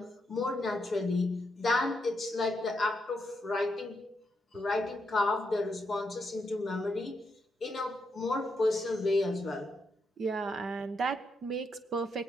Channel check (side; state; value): both; normal; correlation 0.81